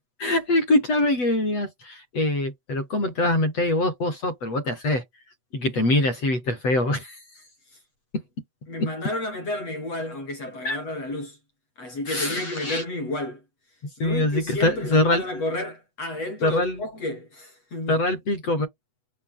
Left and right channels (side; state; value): right; late; 8.1 ms